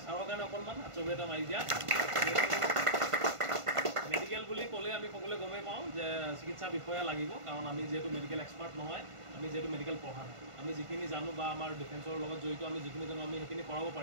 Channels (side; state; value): left; late; 1.5 ms